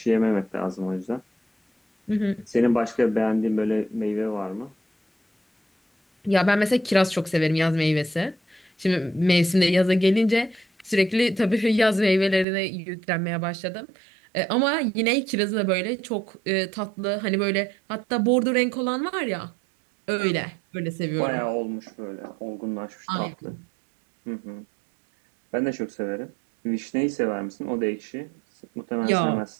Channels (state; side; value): drops out; left; at 12.5 s